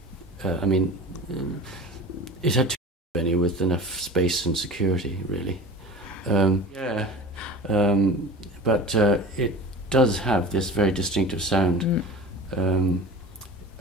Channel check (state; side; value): normal; both; correlation 0.35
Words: I mean, it had too many with enough space and security, really. But it does have this very distinctive sound.